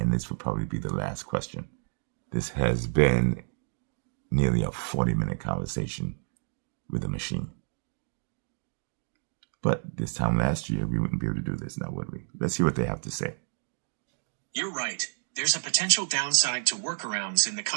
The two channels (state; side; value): silent; left; digital silence